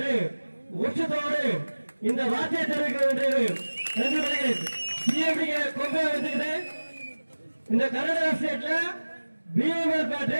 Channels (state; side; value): inverted; both; correlation -1.00